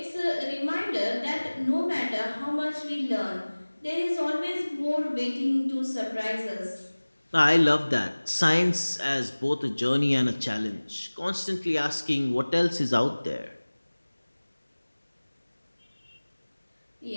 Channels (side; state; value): both; inverted; correlation -1.00